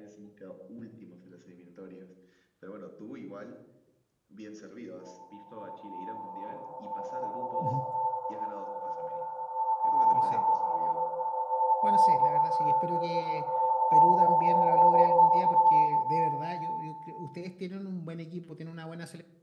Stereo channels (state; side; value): identical; both; correlation 1.00